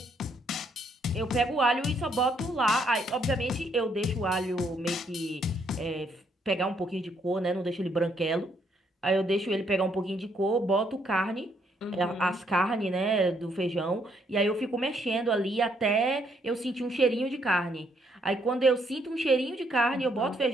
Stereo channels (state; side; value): normal; both; correlation 0.71